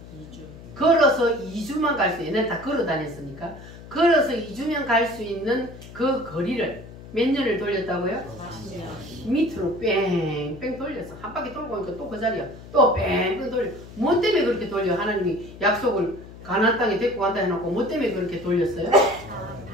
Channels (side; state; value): left; noise; hum, 16 dB below the sound